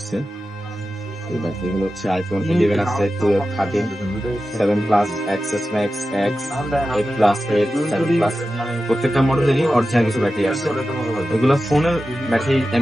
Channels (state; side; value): normal; both; correlation 0.93